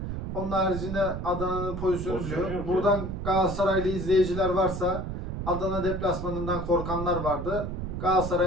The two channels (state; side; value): noise; right; rumble, 5 dB below the sound